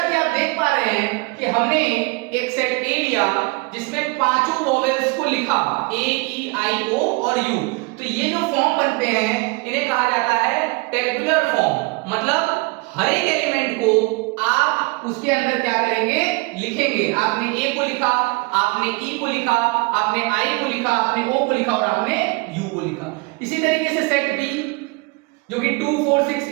कि आप देख पा रहे हैं कि हमने एक सेट ए लिया जिसमें पांचों वोवेल्स को लिखा, ए ई आई ओ और यू। तो ये जो फॉर्म बनते हैं इन्हें कहा जाता है टेबुलर फॉर्म। मतलब हर एक एलिमेंट को आप उसके अंदर क्या करेंगे? लिखेंगे। आपने ए को लिखा, आपने ई को लिखा, आपने आई को लिखा, आपने ओ को लिखा और आपने यू को लिखा। इसी तरीके से सेट बी जो कि 2 4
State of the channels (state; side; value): quieter; left; 27.0 dB